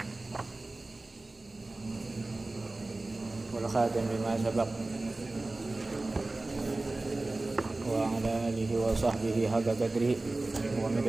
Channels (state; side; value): quieter; left; 3.1 dB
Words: Wal khatim lima sabaq wa ala alihi wa sahbihi haqqa qadrihi wa